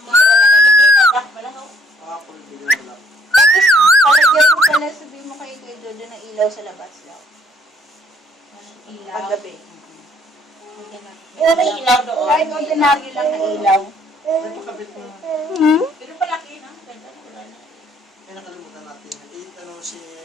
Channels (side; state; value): both; normal; correlation 0.64